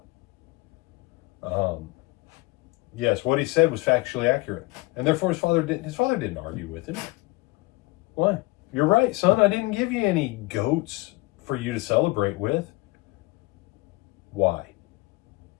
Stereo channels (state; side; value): quieter; right; 22.2 dB